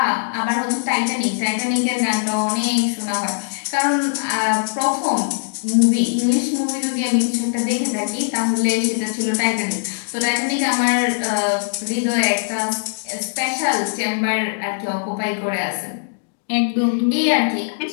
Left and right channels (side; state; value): right; silent; digital silence